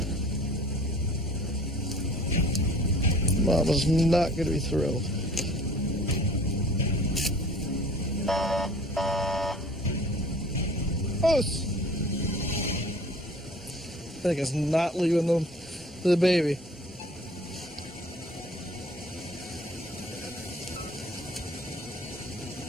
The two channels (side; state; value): both; normal; correlation 0.49